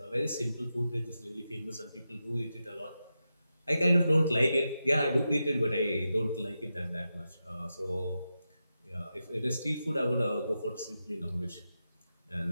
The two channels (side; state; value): both; inverted; correlation -0.89